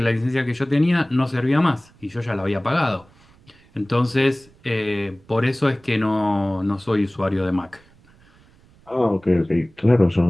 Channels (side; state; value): right; noise; rumble, 29 dB below the sound